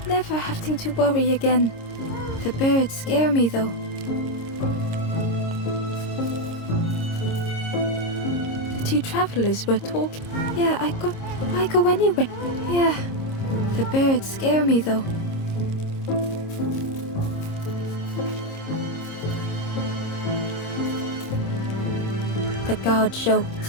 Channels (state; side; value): late; right; 26 ms